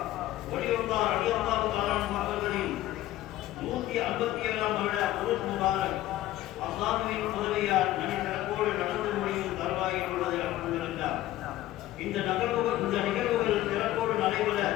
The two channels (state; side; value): quieter; right; 14.9 dB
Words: ஒளியுல்லாஹ் ரலியல்லாஹு தஆலா அவர்களின் 157ஆம் வருட உருஸ் முபாரக் அல்லாஹ்வின் உதவியால் நனிசிறப்போடு நடந்து முடியும் தருவாயில் உள்ளது. அல்ஹம்துலில்லாஹ். இந்த நிகழ்வுகள் சிறப்போடு நடைபெற